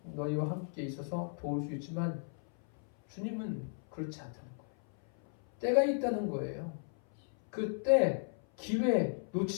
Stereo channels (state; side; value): silent; right; 55 dB below the other